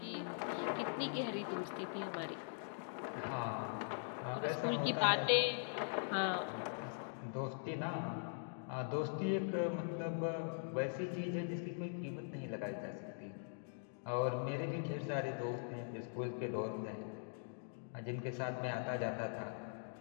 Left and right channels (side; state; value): right; silent; digital silence